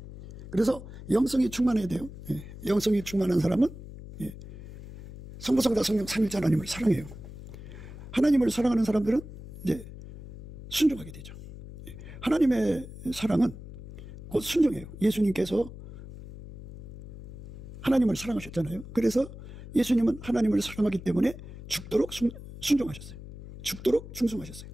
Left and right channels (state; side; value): noise; left; hum, 14 dB below the sound